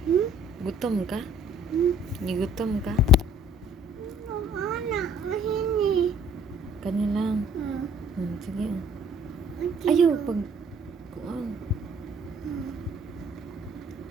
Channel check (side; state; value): both; normal; correlation 0.56